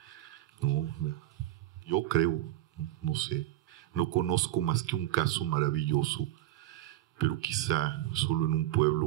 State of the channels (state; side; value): quieter; left; 14.7 dB